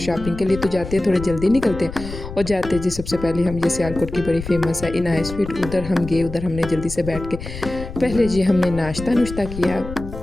के लिए तो जाते हैं, थोड़े जल्दी निकलते हैं। और जाते जी सबसे पहले हम ये सियालकोट की बड़ी फेमस है इनाया स्वीट, उधर हम गए। उधर हमने जल्दी से बैठ के पहले जी हमने नाश्ता किया।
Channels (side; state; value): left; noise; rumble, 10 dB below the sound